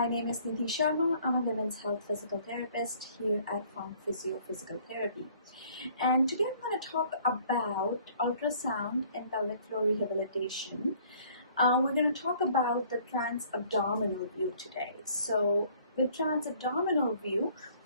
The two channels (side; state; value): both; inverted; correlation -0.57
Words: name is Nidhi Sharma. I'm a women's health physical therapist here at FuncPhysio Physical Therapy. And today I'm going to talk about ultrasound and pelvic floor rehabilitation. We're going to talk about the trans-abdominal view today. So with trans-abdominal view,